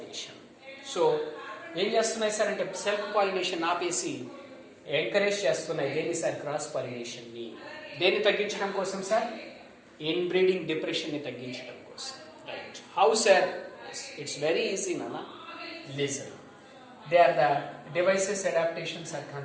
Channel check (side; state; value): both; identical; correlation 1.00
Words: So ఏం చేస్తున్నాయి sir అంటే self pollination ఆపేసి encourage చేస్తున్నాయి దేని sir? Cross pollination ని. దేన్ని తగ్గించడం కోసం సార్? ఇన్బ్రీడింగ్ డిప్రెషన్ ని తగ్గించడం కోసం. Right. How sir? It's very easy నానా. Listen, they are the devices, adaptations are